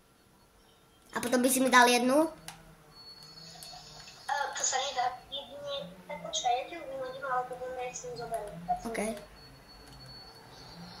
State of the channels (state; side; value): identical; both; correlation 1.00